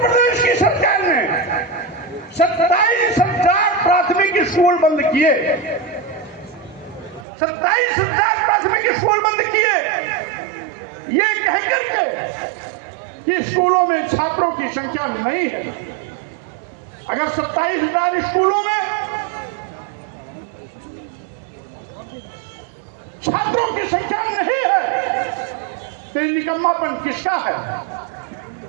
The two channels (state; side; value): drops out; left; at 7.2 s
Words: प्रदेश की सरकार ने 27,000 प्राथमिक स्कूल बंद किए। 27,000 प्राथमिक स्कूल बंद किए, ये कह करके कि स्कूलों में छात्रों की संख्या नहीं है। अगर 27,000 स्कूलों में छात्रों की संख्या नहीं है तो निकम्मापन किसका है,